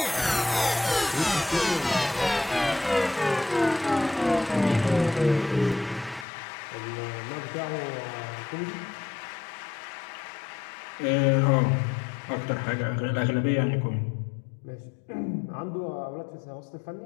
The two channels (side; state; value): right; drops out; at 6.2 s